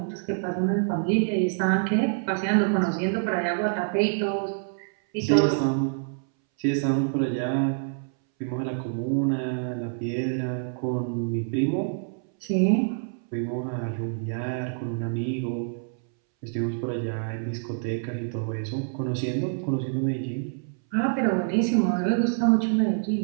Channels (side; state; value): left; silent; 61 dB below the other